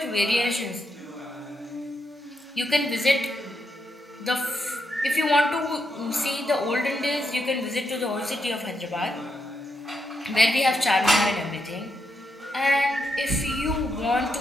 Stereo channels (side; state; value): both; normal; correlation 0.82